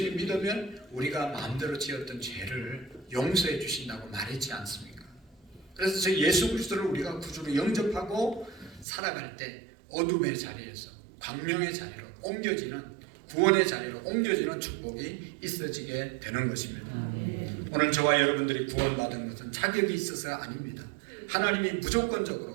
믿으면 우리가 마음대로 지었던 죄를 용서해 주신다고 말했지 않습니까? 그래서 저 예수 그리스도를 우리가 구주로 영접하고 살아갈 때 어둠의 자리에서 광명의 자리로 옮겨지는 구원의 자리로 옮겨지는 축복이 있어지게 되는 것입니다. 오늘 저와 여러분들이 구원받은 것은 자격이 있어서가 아닙니다. 하나님이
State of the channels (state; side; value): drops out; left; at 8.8 s